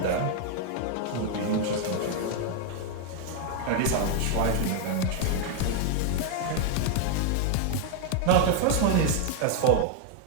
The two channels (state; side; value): different; both; correlation 0.00